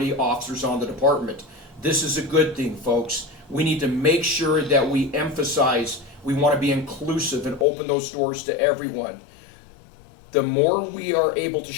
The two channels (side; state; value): right; drops out; at 7.7 s